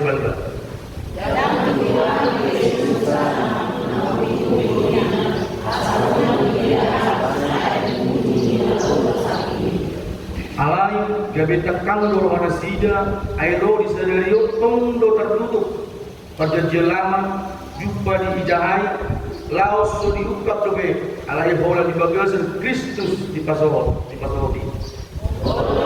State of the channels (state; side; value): identical; both; correlation 1.00